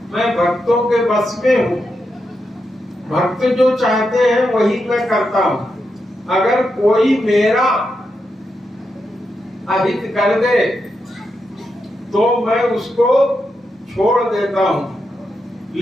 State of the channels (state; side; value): normal; both; correlation 0.85